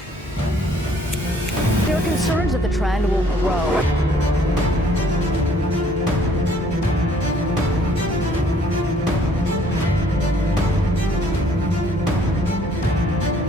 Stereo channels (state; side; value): normal; both; correlation 0.61